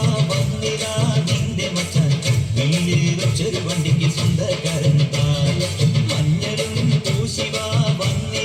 വന്നിതാ നിന്റെ മച്ചാൻ വീട്ടിൽ വെച്ചൊരു വണ്ടിക്ക് സ്വന്തക്കാരൻ താൻ. മഞ്ഞളും പൂശിവാ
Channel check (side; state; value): both; identical; correlation 1.00